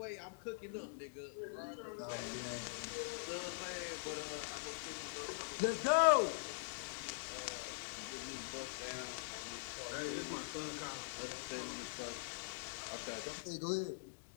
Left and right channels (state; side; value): silent; right; digital silence